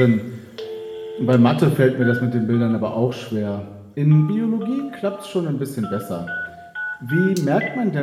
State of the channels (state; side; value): identical; both; correlation 1.00